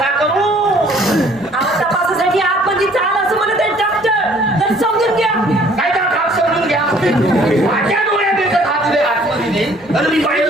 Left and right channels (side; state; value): both; normal; correlation 0.57